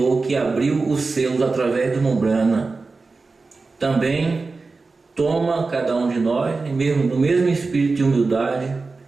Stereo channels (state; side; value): quieter; left; 4.0 dB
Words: que abriu os selos através do Membrana, também toma cada um de nós no mesmo espírito de humildade,